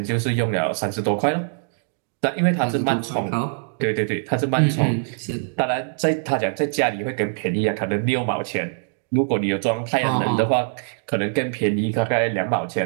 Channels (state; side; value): silent; left; digital silence